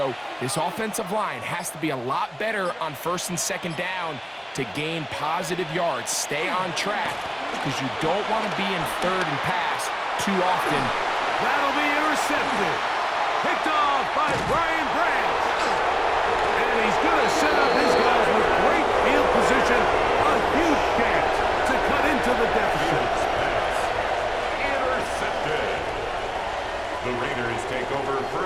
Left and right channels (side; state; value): both; identical; correlation 1.00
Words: this offensive line has to be a lot better on first and second down to gain positive yards. Stay on track because you don't want to be in third and pass too often. That'll be intercepted. Picked off by Brian Branch. And he's going to set up his guys with great field position. A huge chance to cut into the deficit. Intercepted. The Raiders take over